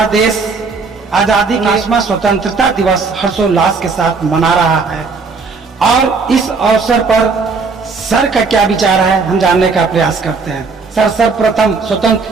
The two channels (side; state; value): left; quieter; 4.6 dB